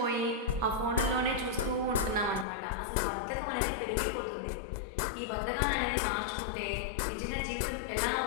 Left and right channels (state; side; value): drops out; right; at 2.5 s